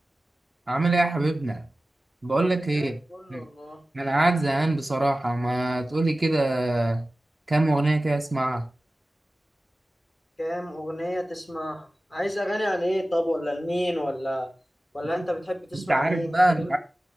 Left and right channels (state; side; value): normal; both; correlation 0.96